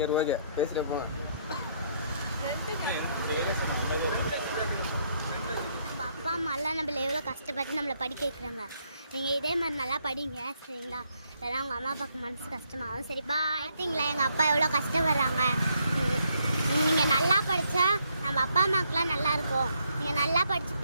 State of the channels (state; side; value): inverted; both; correlation -0.73